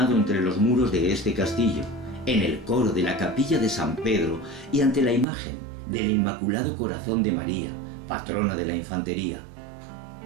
entre los muros de este castillo, en el coro de la capilla de San Pedro y ante la imagen del Inmaculado Corazón de María, patrona de la infantería.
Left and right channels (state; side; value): drops out; left; at 5.2 s